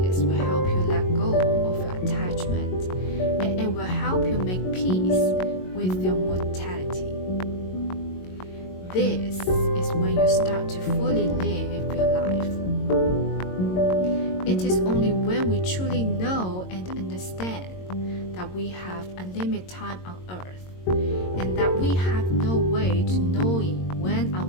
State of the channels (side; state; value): right; late; 22 ms